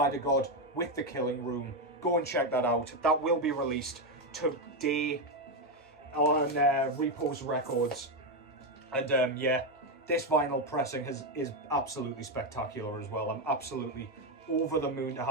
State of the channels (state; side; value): normal; both; correlation 0.07